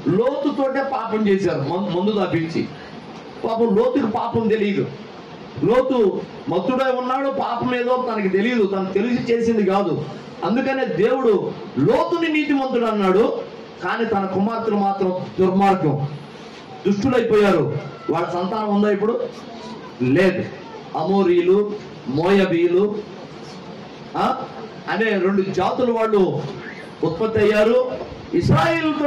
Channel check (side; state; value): both; identical; correlation 1.00